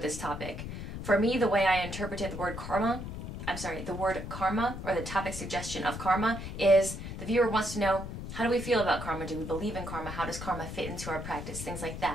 topic. For me, the way I interpreted the word karma, or the topic suggestion of karma, is the viewer wants to know, how do we feel about karma? Do we believe in karma? How does karma fit into our practice? Things like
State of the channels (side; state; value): left; noise; rumble, 7 dB below the sound